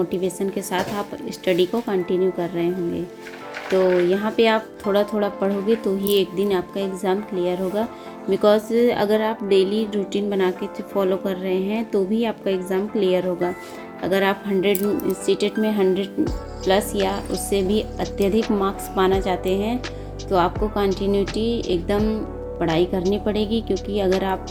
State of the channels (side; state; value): both; identical; correlation 1.00